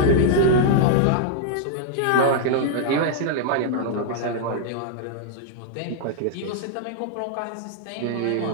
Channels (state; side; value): different; both; correlation -0.01